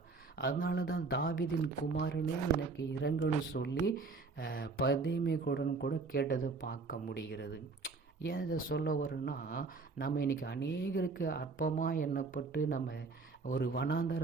அதனால தான் தாவீதின் குமாரனே எனக்கு இறங்கன்னு சொல்லி பதைமை கூட கேட்டதை பார்க்க முடிகிறது. ஏன் இதை சொல்ல வரும்னா, நம்ம இன்றைக்கி அநேகருக்கு அற்பமாக எண்ணப்பட்டு நம்ம ஒரு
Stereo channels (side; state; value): left; quieter; 4.2 dB